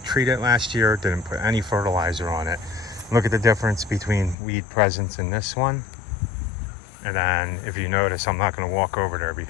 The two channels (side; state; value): right; drops out; at 4.4 s